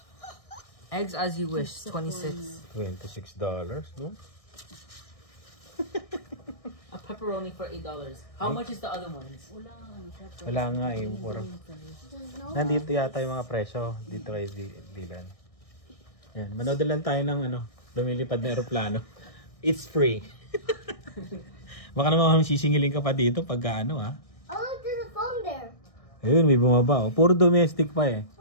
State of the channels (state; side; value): late; right; 1.6 ms